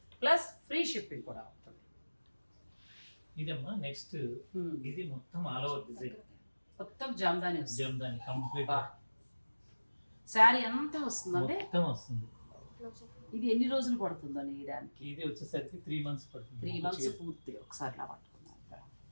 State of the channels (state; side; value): inverted; both; correlation -1.00